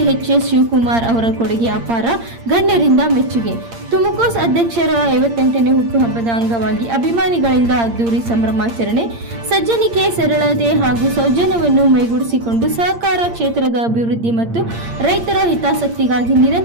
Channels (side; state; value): left; late; 8.7 ms